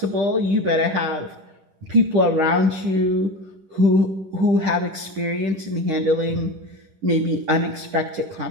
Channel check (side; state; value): left; late; 10 ms